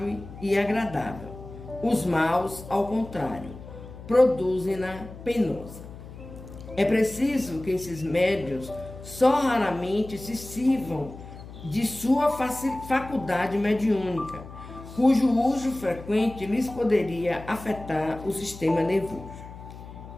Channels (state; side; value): noise; left; hum, 15 dB below the sound